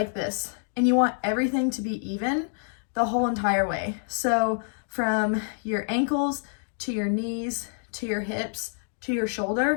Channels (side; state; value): right; silent; digital silence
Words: this. And you want everything to be even the whole entire way. So from your ankles to your knees to your hips to your